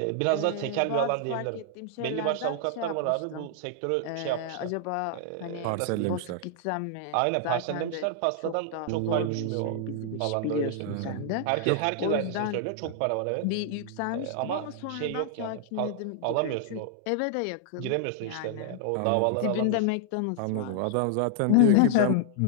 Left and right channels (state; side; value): different; both; correlation -0.01